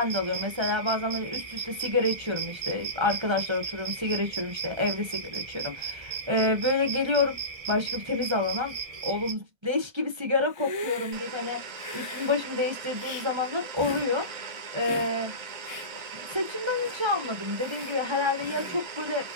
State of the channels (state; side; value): late; left; 1.3 ms